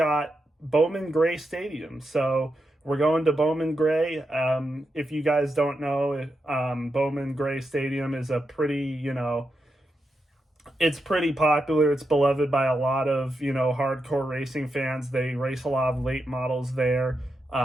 Bowman Gray Stadium. So we're going to Bowman Gray. If you guys don't know, Bowman Gray Stadium is a pretty, it's pretty popular. It's beloved by a lot of, hardcore racing fans. They race a lot of late models there.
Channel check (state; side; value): normal; both; correlation 0.86